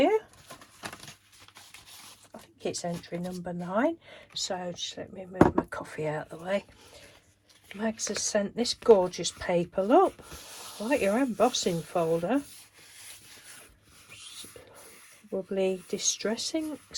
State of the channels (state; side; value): identical; both; correlation 1.00